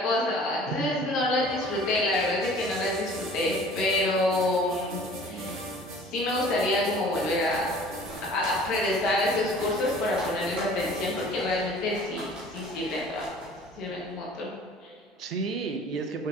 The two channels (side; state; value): both; normal; correlation 0.49